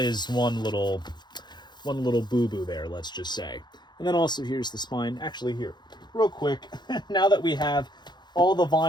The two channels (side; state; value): right; late; 0.21 ms